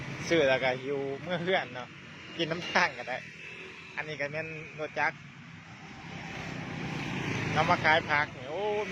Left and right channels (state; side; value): identical; both; correlation 1.00